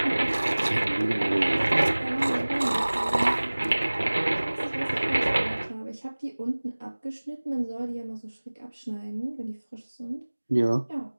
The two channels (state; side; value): inverted; both; correlation -1.00